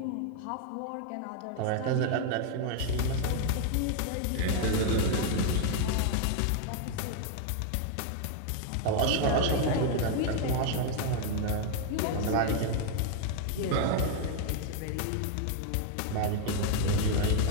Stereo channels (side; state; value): both; different; correlation 0.00